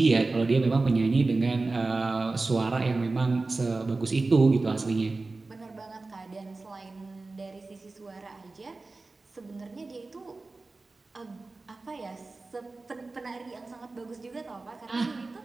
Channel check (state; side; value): quieter; left; 3.5 dB